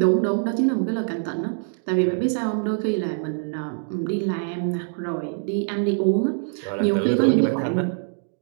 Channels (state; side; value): silent; left; digital silence